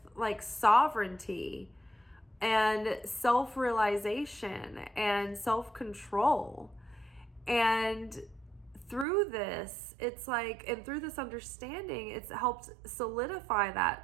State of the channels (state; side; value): drops out; left; at 9.1 s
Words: like sovereignty and self-realization and self-control. And through this, it's like, and through this understanding, it's helped solidify